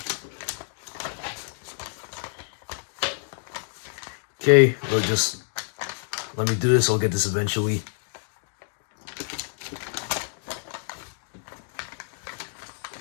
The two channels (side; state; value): right; silent; digital silence